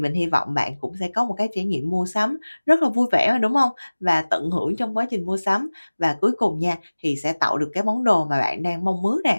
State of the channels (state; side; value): inverted; both; correlation -1.00